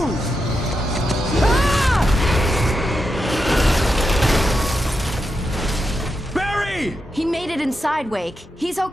Barry! He made it inside, Wake. He's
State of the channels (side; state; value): both; normal; correlation 0.86